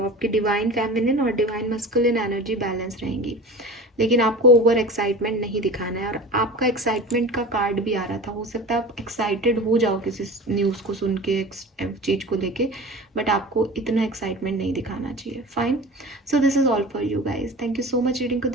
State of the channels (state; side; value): normal; both; correlation 0.35